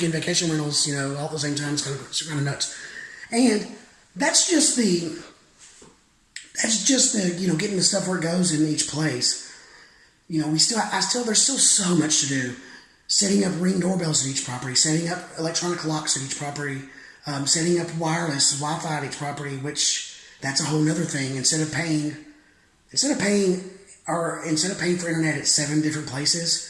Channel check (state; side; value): identical; both; correlation 1.00